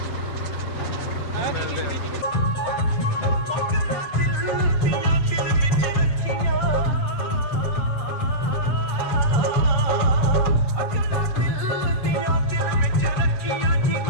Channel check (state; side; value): late; right; 7.7 ms